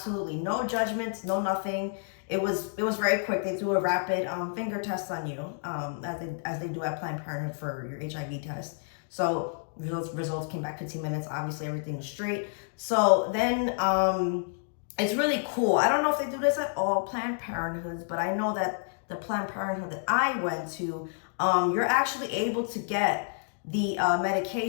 no judgments, no nothing. It was very quick. They do a rapid finger test on you, as they do at Planned Parenthood for your HIV test. So results came back 15 minutes. Obviously, everything was straight. So then it's really cool. I don't know if they do this at all Planned Parenthoods, but I know that the Planned Parenthood that I went to, you're actually able to get the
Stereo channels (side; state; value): right; silent; digital silence